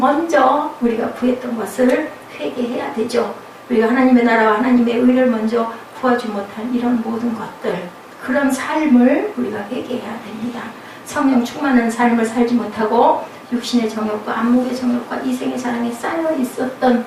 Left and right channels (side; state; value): both; identical; correlation 1.00